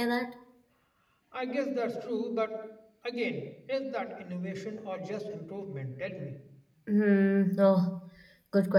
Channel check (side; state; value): both; identical; correlation 1.00